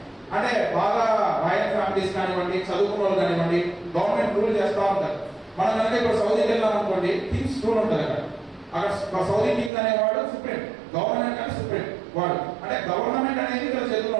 అంటే బాగా రాయల్ ఫ్యామిలీస్ కానివ్వండి, చదువుకున్న వాళ్ళు కానివ్వండి, గవర్నమెంట్ రూల్ చేస్తూ ఉంటారు. మనం కనుక ఇప్పుడు సౌదీకి వెళ్ళాం అనుకోండి, కింగ్స్ రూల్ ఉంటుంది అక్కడ సౌదీ కింగ్ అనేవాడు సుప్రీం, గవర్నమెంట్ అంటే సుప్రీం వాడు. అంటే గవర్నమెంట్ అనేది ఇక్కడ చేతుల్లో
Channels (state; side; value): drops out; left; at 9.7 s